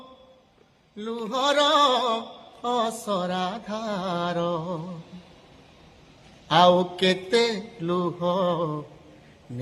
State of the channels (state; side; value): identical; both; correlation 1.00